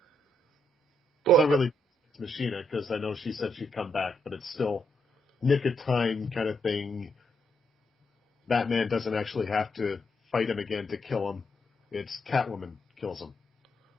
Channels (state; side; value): normal; both; correlation 0.78